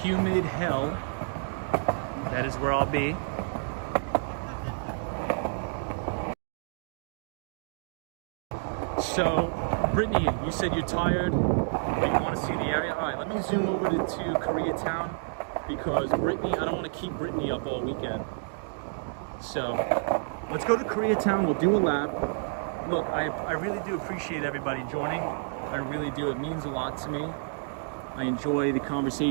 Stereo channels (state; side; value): silent; left; digital silence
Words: humid hell. That is where I'll be. So, Brittany, you said you're tired, but you want to see the area. All right, let me zoom over to Koreatown because Brittany, I don't want to keep Brittany up all weekend. So, let's go to Koreatown. We'll do a lap. Look, I really do appreciate everybody joining. I really do. It means a lot to me. I enjoy the